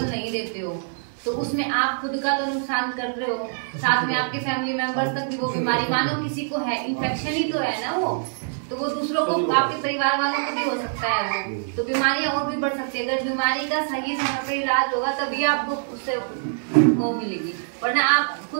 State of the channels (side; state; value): left; silent; 62 dB below the other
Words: नहीं देते हो, तो उसमें आप खुद का तो नुकसान कर रहे हो, साथ में आपके फैमिली मेंबर्स तक भी वो बीमारी, मानो किसी को है, इन्फेक्शन ही तो है ना वो, तो वो दूसरों को, आपके परिवार वालों को भी हो सकता है वो, तो बीमारियां और भी बढ़ सकती है। अगर बीमारी का सही समय पर इलाज होगा तभी आपको उससे वो मिलेगी, वरना आप